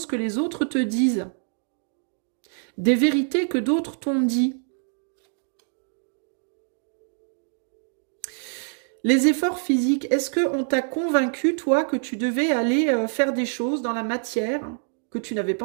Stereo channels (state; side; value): silent; left; 62 dB below the other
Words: que les autres te disent. Des vérités que d'autres t'ont dit. Les efforts physiques, est-ce qu'on t'a convaincu, toi, que tu devais aller faire des choses dans la matière que tu n'avais pas